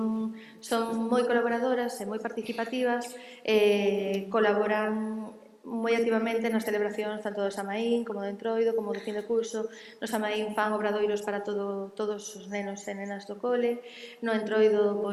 moi colaboradoras e moi participativas, colaboran moi activamente nas celebracións tanto do Samaín como do Entroido como do fin de curso. No Samaín fan obradoiros para todos os nenos e nenas do cole. No Entroido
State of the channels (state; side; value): identical; both; correlation 1.00